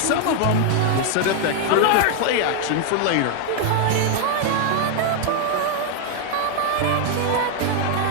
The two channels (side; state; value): both; different; correlation 0.00